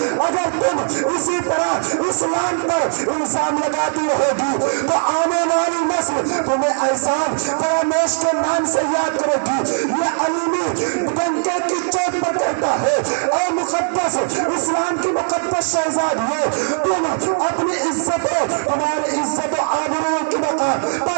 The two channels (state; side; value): silent; left; 66 dB below the other